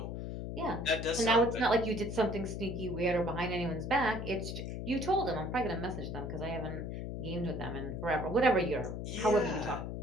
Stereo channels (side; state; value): left; noise; hum, 5 dB below the sound